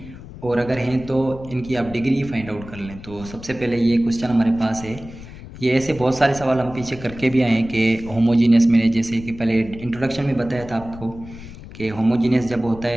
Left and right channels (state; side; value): noise; left; rumble, 15 dB below the sound